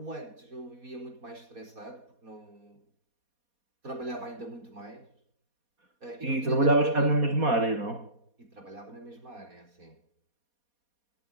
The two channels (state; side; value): late; left; 4.2 ms